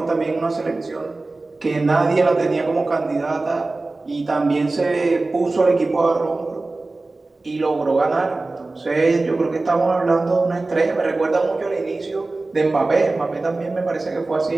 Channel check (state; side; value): quieter; left; 3.3 dB